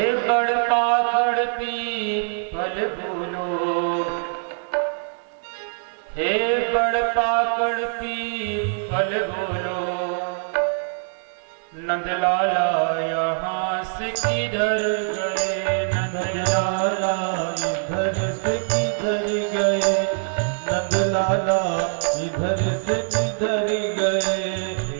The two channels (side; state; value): left; silent; digital silence